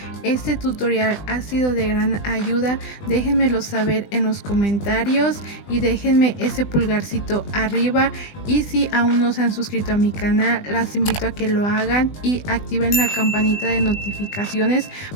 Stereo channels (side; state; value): right; late; 20 ms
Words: este tutorial ha sido de gran ayuda, déjenmelo saber en los comentarios y déjenme ese pulgarcito arriba, y si aún no se han suscrito a mi canal, las invito a que lo hagan y activen la campanita de notificaciones